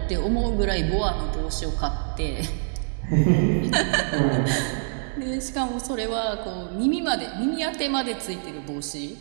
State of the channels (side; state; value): left; silent; digital silence